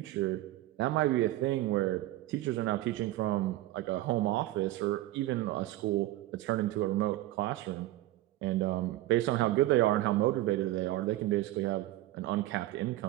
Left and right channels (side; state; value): left; quieter; 16.3 dB